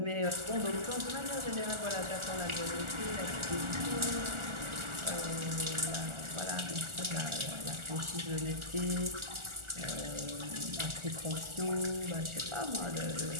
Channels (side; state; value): left; late; 1.4 ms